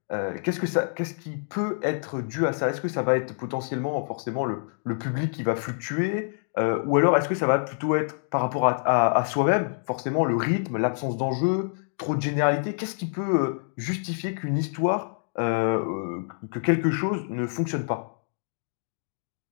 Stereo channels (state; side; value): silent; right; digital silence